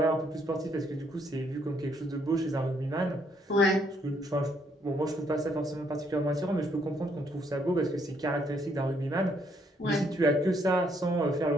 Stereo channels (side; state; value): both; normal; correlation 0.70